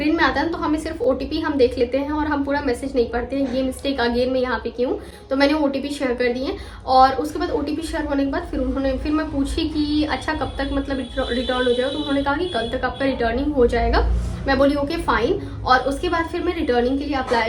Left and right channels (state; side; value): identical; both; correlation 1.00